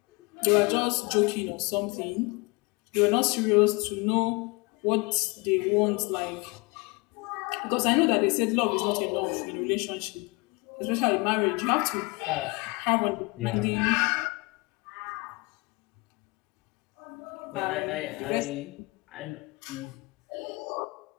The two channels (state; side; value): quieter; right; 26.9 dB